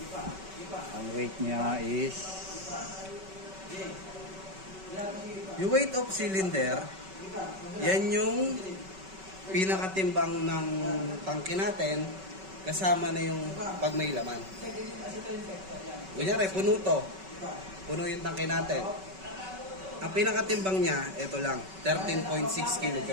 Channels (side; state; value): left; late; 5.3 ms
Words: Ang weight niya is Yung weight of cylinder, yan yung pinakatimbang ng tangke natin kasama na yung pag may laman. Kunyari, puno to. Puno yung tangke natin. Ang pinakatimbang niya, ito lang, 13.6 kg.